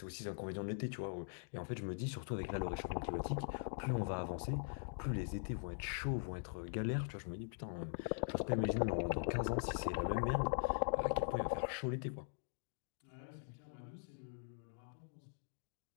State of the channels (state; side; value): silent; right; digital silence